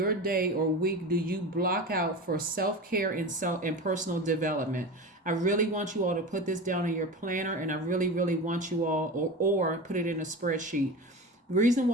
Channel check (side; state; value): both; normal; correlation 0.28